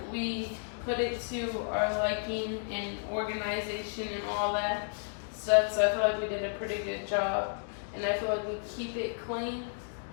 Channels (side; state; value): right; silent; digital silence